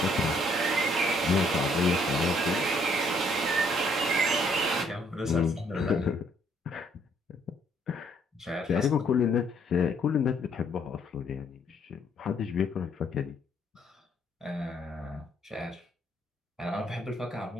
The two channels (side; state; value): both; normal; correlation 0.67